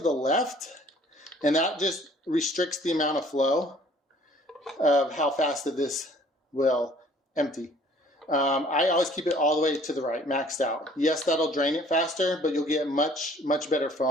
left, and that just restricts the amount of flow of how fast that this will empty. I always keep it all the way to the right, maxed out. Yes, that'll drain it faster, but you'll get much better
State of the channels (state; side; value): normal; both; correlation 0.55